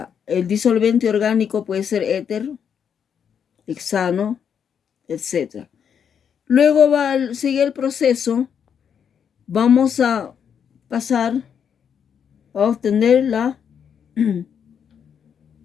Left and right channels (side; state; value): right; quieter; 7.7 dB